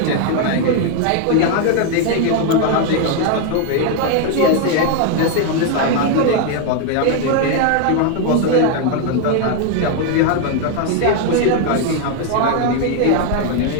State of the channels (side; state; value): both; different; correlation 0.01